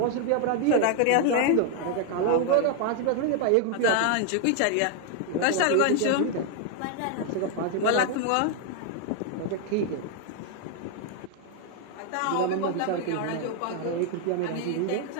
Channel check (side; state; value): both; different; correlation 0.00